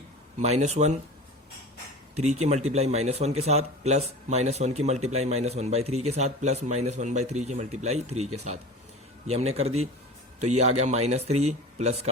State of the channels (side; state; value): both; normal; correlation 0.34